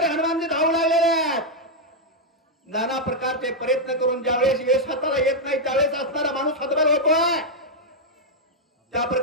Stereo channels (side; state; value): both; normal; correlation -0.02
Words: हनुमानजी धावू लागलेले आहेत. नाना प्रकारचे प्रयत्न करून ज्यावेळेस यश हाताला येत नाही त्यावेळेस असणारा माणूस हतबल होतोय. त्या